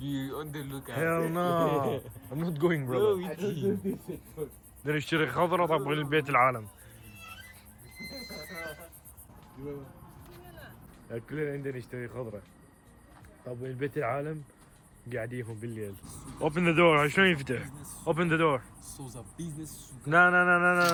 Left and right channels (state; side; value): identical; both; correlation 1.00